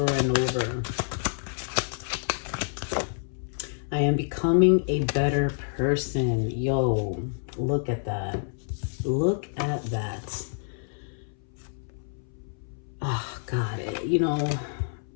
and over. I am becoming a better person. Yo, look at that. Look at that. Oh, God. You know,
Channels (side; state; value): right; silent; 59 dB below the other